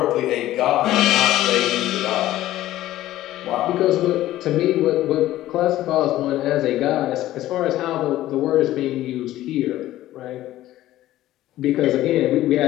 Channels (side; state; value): right; quieter; 14.7 dB